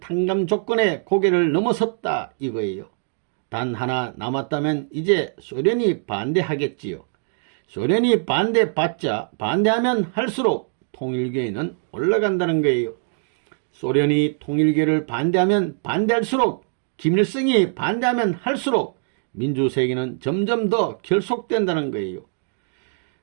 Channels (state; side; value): silent; left; 64 dB below the other